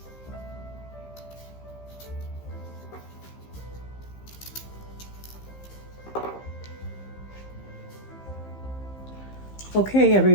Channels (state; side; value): late; right; 15 ms